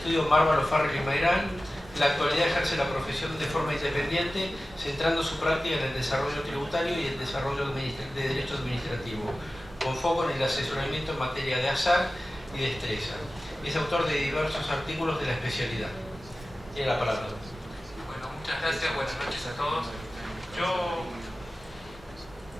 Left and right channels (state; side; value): normal; both; correlation 0.96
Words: Mármol, O'Farrell y Mayrán. En la actualidad ejerce la profesión de forma independiente, centrando su práctica en el desarrollo tributario y el desarrollo de derecho administrativo, con foco en el asesoramiento en materia de azar y destreza. Es autor de diversos artículos de la especialidad. Tiene la palabra. Bueno, muchas gracias, buenas noches a todos.